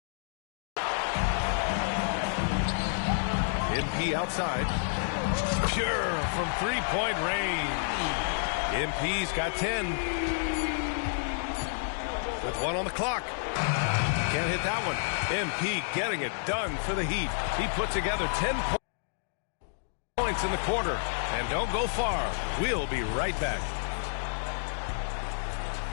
MP outside. Pure from three-point range. MP's got 10. With 1 on the clock. Can't hit that one. MP getting it done for the Heat. He put together 10 points in the quarter. And don't go far. We'll be right back.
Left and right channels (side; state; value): right; silent; digital silence